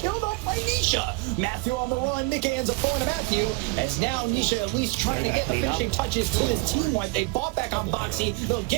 off by Nisha. Matthew on the run. Nick ends up falling to Matthew. As now Nisha at least trying to get the finishing touches to his team wipe. They bought back on Boxy. They'll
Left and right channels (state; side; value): quieter; left; 24.3 dB